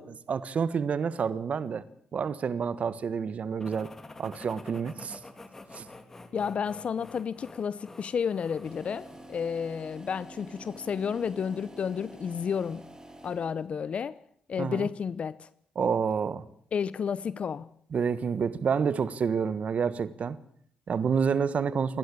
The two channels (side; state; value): both; normal; correlation 0.76